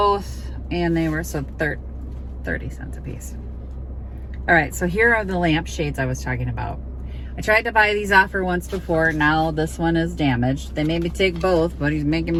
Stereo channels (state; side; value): identical; both; correlation 1.00